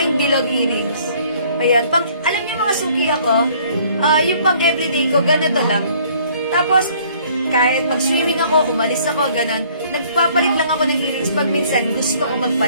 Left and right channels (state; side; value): inverted; both; correlation -0.58